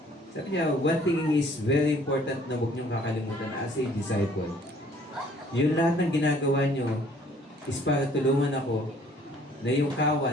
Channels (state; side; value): normal; both; correlation 0.58